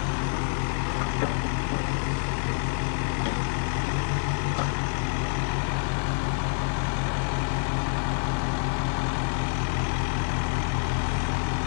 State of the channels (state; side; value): silent; right; digital silence